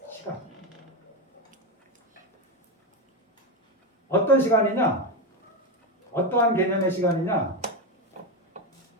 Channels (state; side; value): normal; both; correlation 0.12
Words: 어떤 시간이냐? 어떠한 개념의 시간이냐?